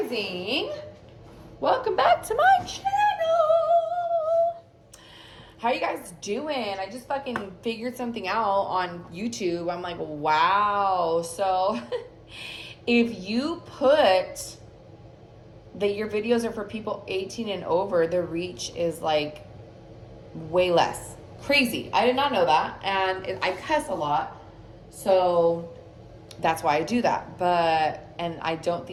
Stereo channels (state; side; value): identical; both; correlation 1.00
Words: Welcome back to my channel. How you guys doing? I just fucking figured something out on YouTube. I'm like, wow. So if you put that your videos are for people 18 and over, the reach is like way less. Crazy. I did not know that. And I cuss a lot. So that's why I do that. And I don't